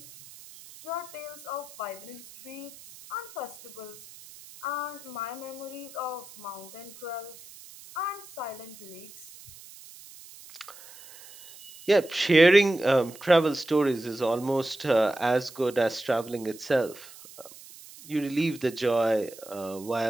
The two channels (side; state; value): right; noise; hiss, 19 dB below the sound